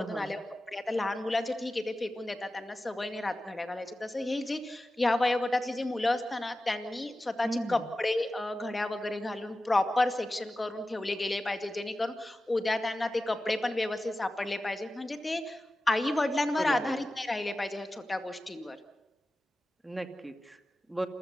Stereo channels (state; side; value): normal; both; correlation 0.94